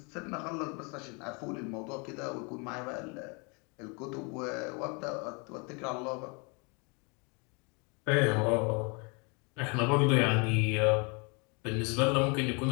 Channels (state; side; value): quieter; right; 32.3 dB